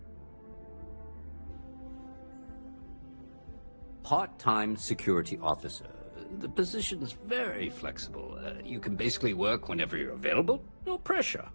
Part-time security officer. The position's very flexible. You can basically work whenever you're available. No pressure.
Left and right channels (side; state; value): both; inverted; correlation -1.00